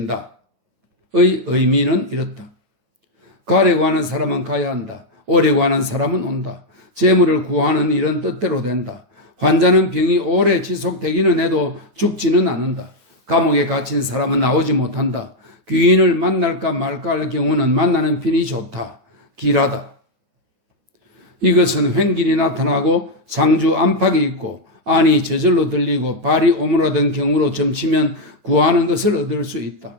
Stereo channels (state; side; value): late; left; 9.1 ms